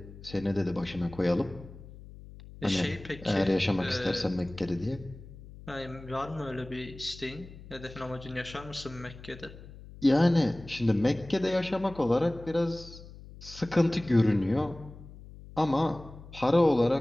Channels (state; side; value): noise; left; hum, 17 dB below the sound